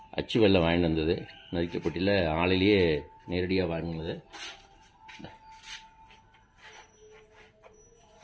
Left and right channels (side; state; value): both; identical; correlation 1.00